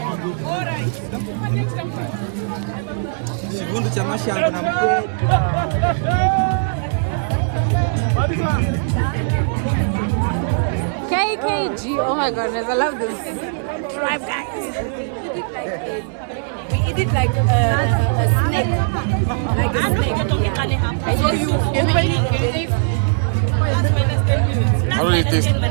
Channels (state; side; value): silent; left; digital silence